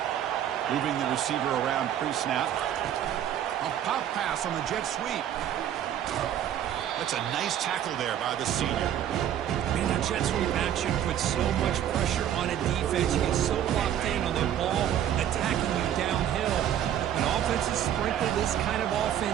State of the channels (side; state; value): left; quieter; 10.5 dB